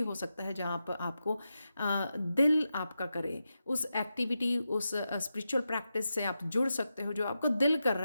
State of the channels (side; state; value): both; inverted; correlation -0.89